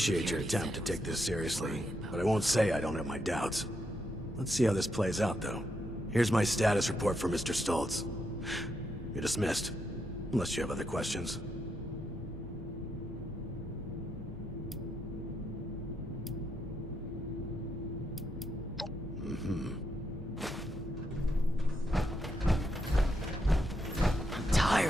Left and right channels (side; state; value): both; normal; correlation 0.80